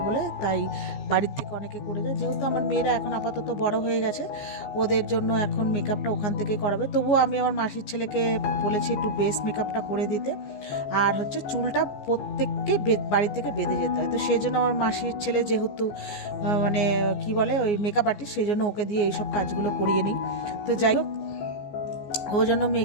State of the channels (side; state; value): right; late; 14 ms